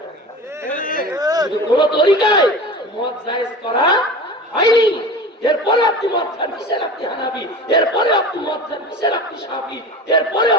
শুধু কোন তরিকায় মদ জায়েজ করা হয়নি। এরপরে আপনি মদ খান, কিসের আপনি হানাফি? এরপরে আপনি মদ খান, কিসের আপনি শাফি? এরপরে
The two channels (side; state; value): both; normal; correlation 0.34